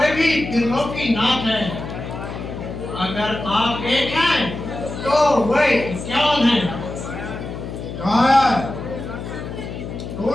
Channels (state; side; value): noise; left; hum, 8 dB below the sound